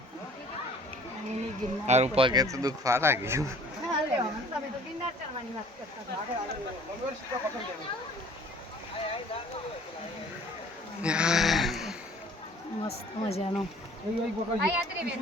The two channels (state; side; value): normal; both; correlation 0.51